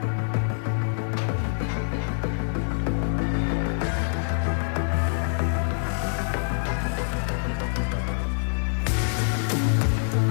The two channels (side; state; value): right; silent; digital silence